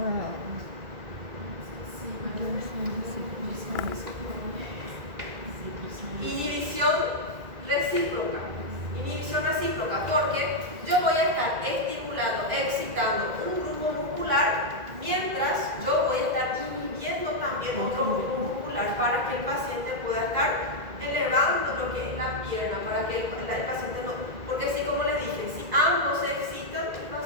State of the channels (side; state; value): left; late; 1.9 ms